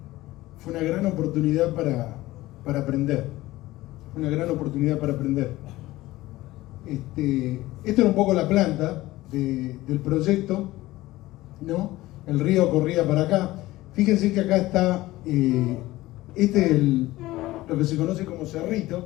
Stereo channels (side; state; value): right; quieter; 17.6 dB